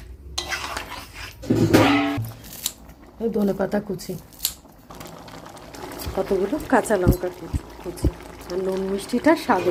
ধনেপাতা কুচি, কতগুলো কাঁচা লঙ্কা কুচি। আর নুন মিষ্টিটা স্বাদ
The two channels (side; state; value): both; identical; correlation 1.00